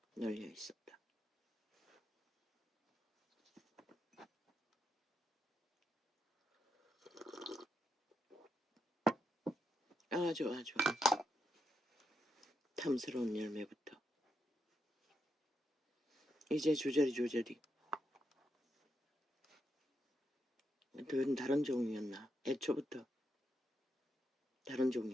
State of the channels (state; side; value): normal; both; correlation 0.82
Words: 널려 있었다. 아주 탐스러운 열매부터 이제 조절이 다른 종류였나? 애초부터 다른